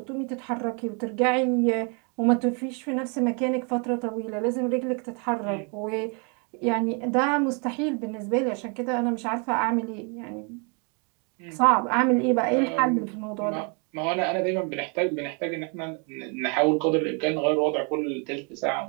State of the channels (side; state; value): left; quieter; 35.8 dB